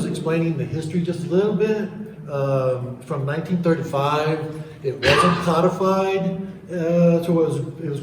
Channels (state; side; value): identical; both; correlation 1.00